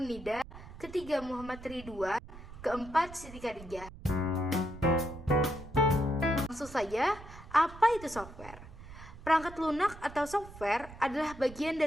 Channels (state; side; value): noise; right; rumble, 16 dB below the sound